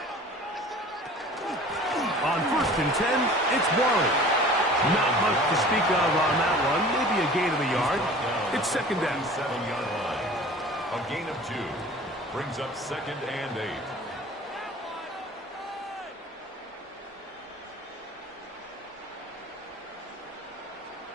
On 1st and 10, it's Warren. Not much to speak of on that one. Maybe a gain of a yard. It's second down. 7-yard line. A gain of 2 brings up 2nd and 8.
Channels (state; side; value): normal; both; correlation 0.44